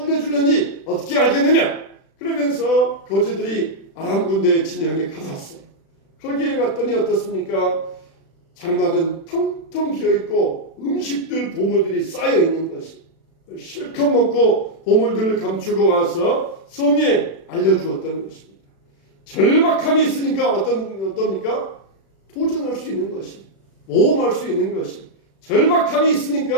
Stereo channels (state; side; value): late; right; 36 ms